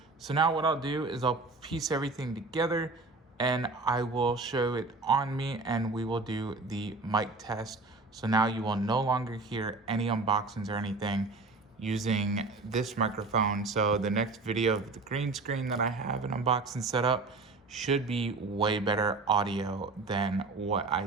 So now what I'll do is I'll piece everything together and I will show it on me, and we will do the mic test So now you will no longer hear any unboxings or anything using this microphone. So the next video of the green screen that I have an unboxing set up should be way better audio than what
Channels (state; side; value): quieter; left; 3.6 dB